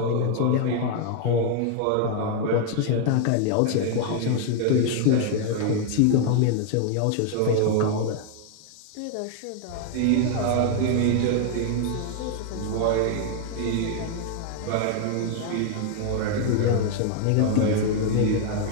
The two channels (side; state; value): both; different; correlation 0.00